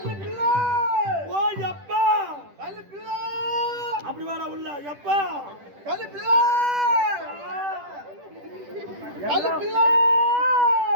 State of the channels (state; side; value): late; left; 10 ms